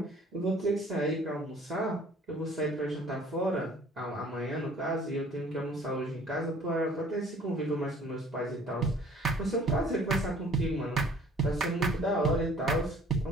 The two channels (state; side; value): normal; both; correlation 0.53